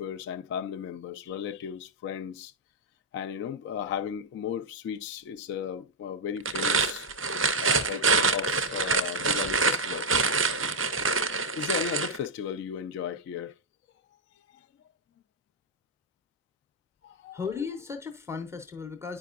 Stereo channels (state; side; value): normal; both; correlation 0.00